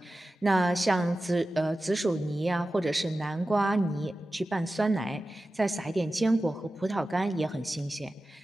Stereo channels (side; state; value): both; normal; correlation 0.94